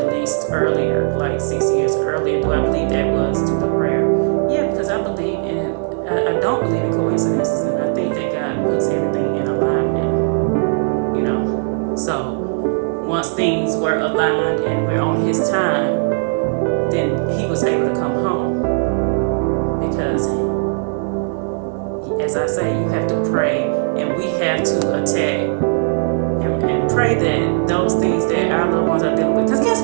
earlier, like 6 years earlier. Do I believe that was through the prayer? Yeah, because I believe I don't believe in coincidences. And I think that God puts everything in alignment. So once things were aligned and we're on his time, then he was able to come home. Because, as I say, you have to pray, and we have to attack and pray that those things that our loved ones are dealing with. Because guess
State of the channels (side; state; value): left; silent; digital silence